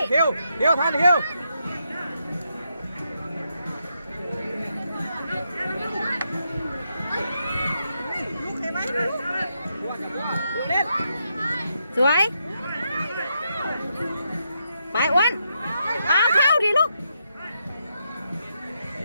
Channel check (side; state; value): both; inverted; correlation -0.81